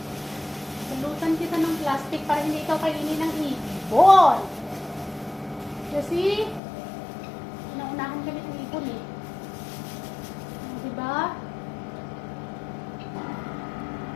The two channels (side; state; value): right; drops out; at 6.6 s